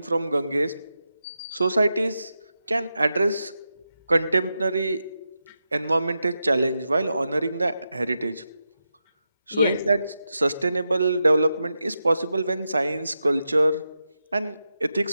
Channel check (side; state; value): both; inverted; correlation -0.88